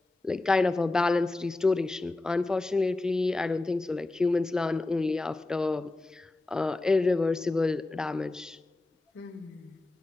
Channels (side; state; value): right; quieter; 3.0 dB